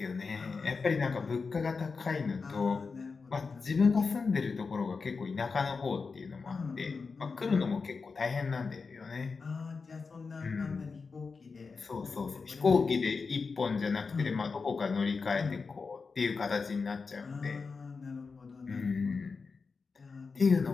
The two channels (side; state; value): right; quieter; 4.7 dB